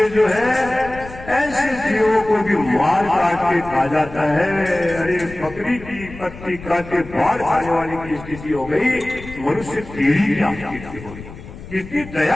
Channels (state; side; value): noise; left; rumble, 15 dB below the sound